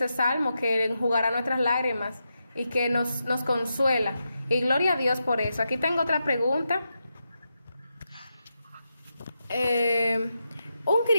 salmo, que enjugará nuestras lágrimas y que nos consuela. Y gloria a Dios por eso. Aquí tengo otra pregunta. ¿Un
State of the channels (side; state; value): both; inverted; correlation -0.86